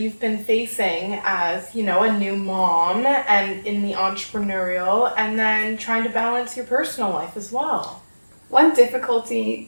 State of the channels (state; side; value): inverted; both; correlation -1.00